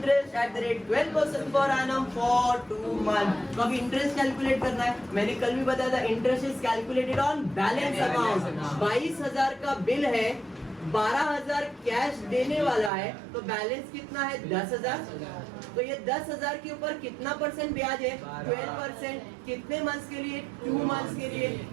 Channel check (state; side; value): drops out; left; at 12.9 s